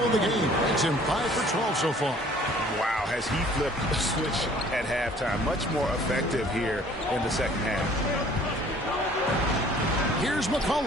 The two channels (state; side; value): normal; both; correlation 0.54